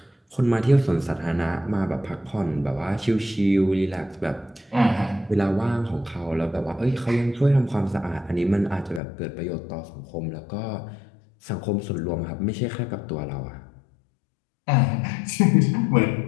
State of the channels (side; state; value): right; drops out; at 9.0 s